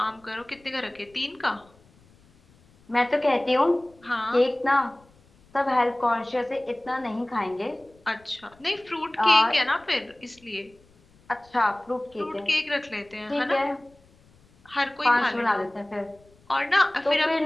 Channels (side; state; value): left; noise; rumble, 30 dB below the sound